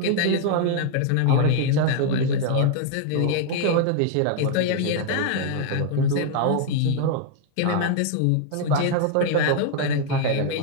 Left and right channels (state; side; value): different; both; correlation 0.00